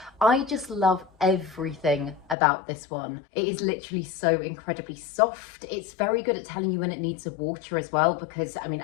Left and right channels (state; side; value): drops out; right; at 2.4 s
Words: I just love everything about this one. It is literally so incredibly soft. It's very good at telling you when it needs a water as well, because I mean,